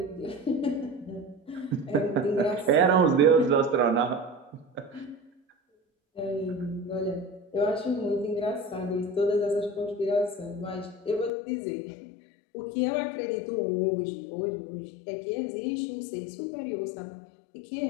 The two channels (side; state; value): right; drops out; at 11.3 s